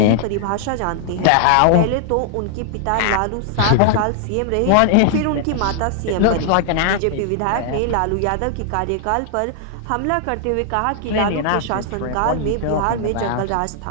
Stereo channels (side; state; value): both; different; correlation -0.01